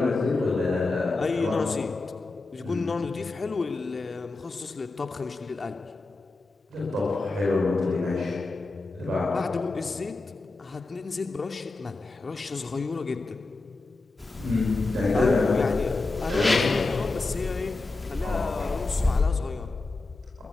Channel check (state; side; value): quieter; right; 3.4 dB